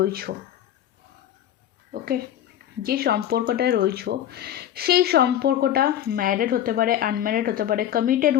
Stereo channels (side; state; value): right; quieter; 11.2 dB